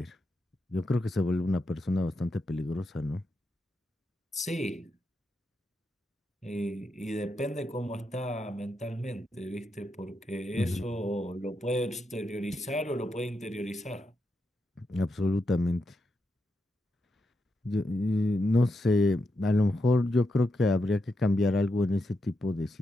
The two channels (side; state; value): both; normal; correlation 0.85